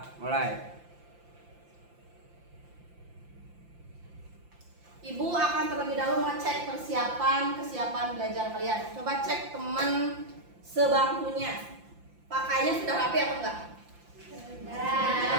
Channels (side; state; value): left; late; 5.8 ms